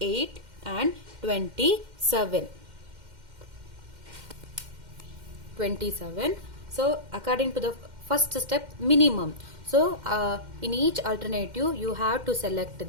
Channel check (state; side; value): late; left; 2.1 ms